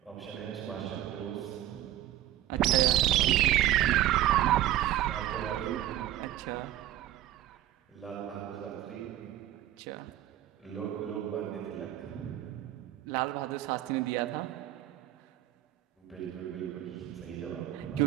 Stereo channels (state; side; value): quieter; left; 13.6 dB